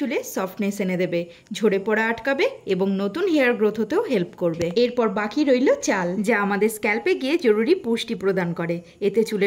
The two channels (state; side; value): identical; both; correlation 1.00